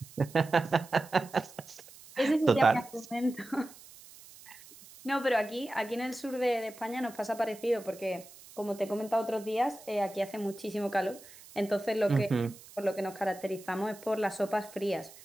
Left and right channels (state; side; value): noise; right; hiss, 20 dB below the sound